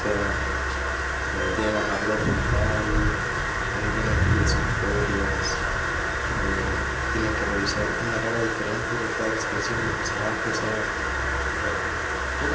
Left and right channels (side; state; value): both; identical; correlation 1.00